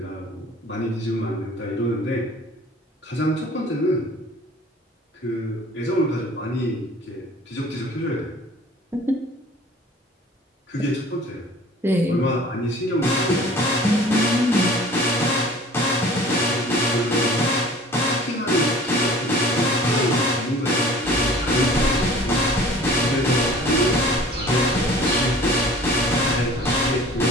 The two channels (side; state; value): both; normal; correlation 0.47